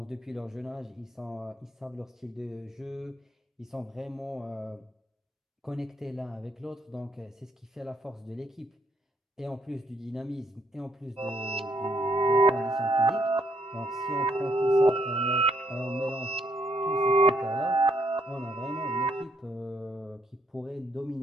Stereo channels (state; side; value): normal; both; correlation 0.72